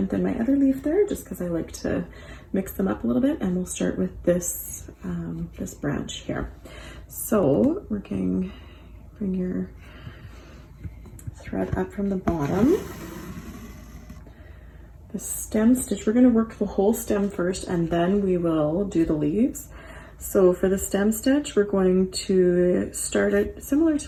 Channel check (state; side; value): identical; both; correlation 1.00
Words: than my other leaf there, just because I like to mix them up a little bit. And we'll start with this, this branch here. So bring your thread up from the bottom. The stem stitch, we're going to work the whole stem first and then we will do the leaves. So for the stem stitch, we're going to start it similar